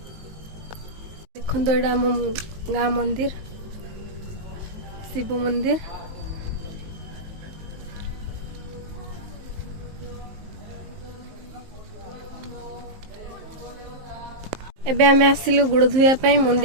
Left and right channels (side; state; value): left; late; 19 ms